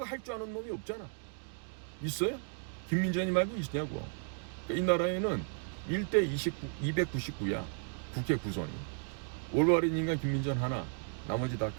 할 줄 아는 놈이 없잖아. 있어요? 김민전이 말고 있냐고. 그러니까 이 나라에는 1대 299야. 국회 구성이. 올바른 인간 김민전 하나, 나머지 다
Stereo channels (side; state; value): left; silent; 55 dB below the other